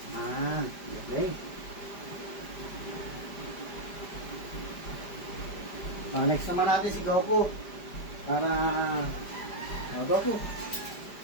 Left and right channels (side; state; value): right; late; 5.0 ms